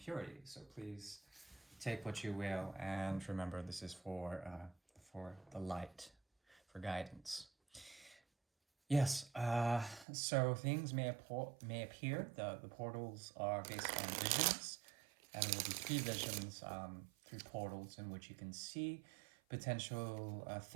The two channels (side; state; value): left; drops out; at 10.1 s